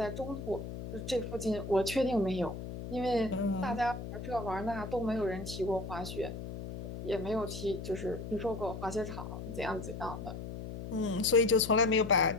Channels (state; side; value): noise; left; hum, 8 dB below the sound